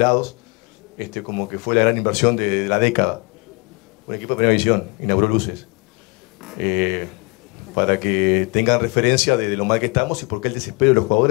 como que fue la gran inversión de la década. Un equipo de primera división inauguró luces. Para que tengan referencia de lo mal que estamos y por qué el desespero de los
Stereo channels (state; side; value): quieter; right; 29.9 dB